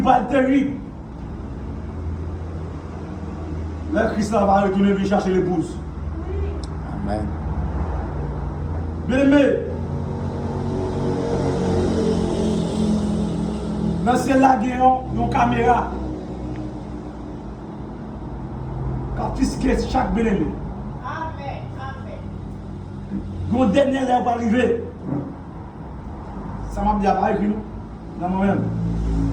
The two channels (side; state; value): both; identical; correlation 1.00